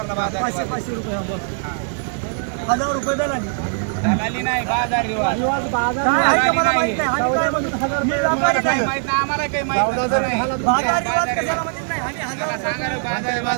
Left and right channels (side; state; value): left; silent; digital silence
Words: बाजार 500 रुपये 1000 रुपये दलाली दलाली नाही बाजार रिवाज बाजार मला माहित नाही आम्हाला काही माहित बाजार रिवाज कशाला माहित नाही आम्ही 1000 सांगायला